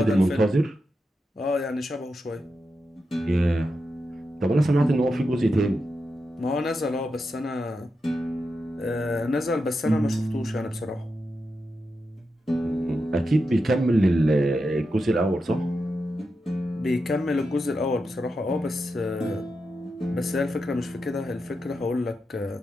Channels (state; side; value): normal; both; correlation 0.88